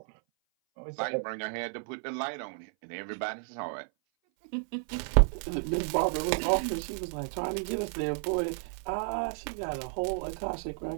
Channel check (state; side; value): silent; left; 56 dB below the other